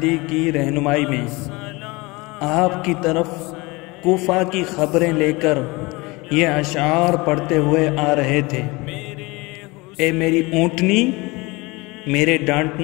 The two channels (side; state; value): right; quieter; 24.2 dB